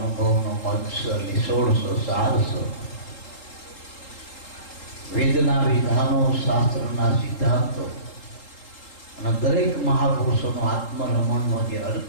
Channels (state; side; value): late; right; 3.8 ms